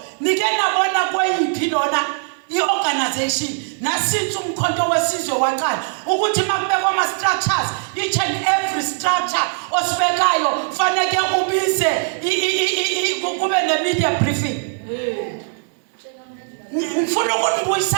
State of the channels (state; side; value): silent; left; digital silence